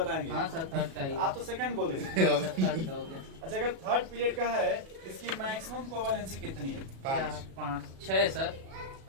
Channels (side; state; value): left; late; 37 ms